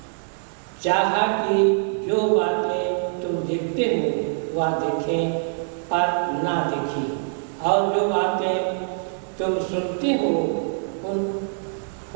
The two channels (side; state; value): left; silent; digital silence